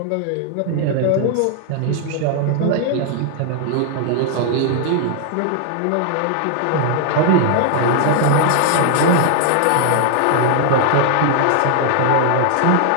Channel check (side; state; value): both; different; correlation 0.00